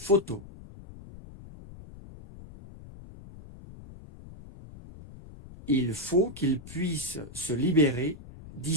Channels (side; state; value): left; noise; rumble, 17 dB below the sound